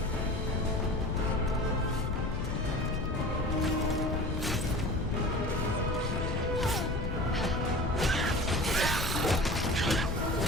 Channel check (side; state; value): left; noise; rumble, 1 dB below the sound